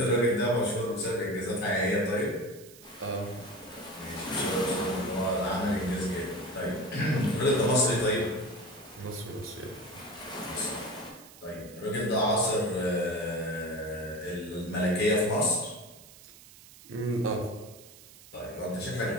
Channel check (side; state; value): right; noise; hiss, 20 dB below the sound